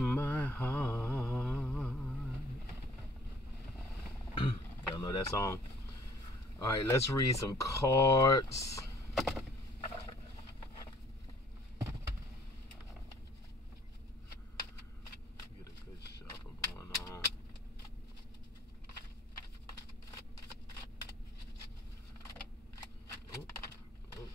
heart. Y'all know that song? Alright, let's read some cards. Get a good shuffle going on.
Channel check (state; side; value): normal; both; correlation 0.57